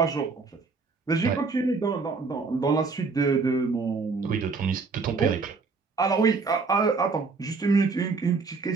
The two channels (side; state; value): left; quieter; 4.4 dB